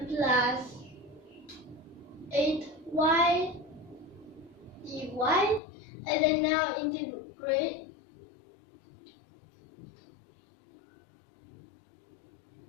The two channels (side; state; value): right; drops out; at 5.6 s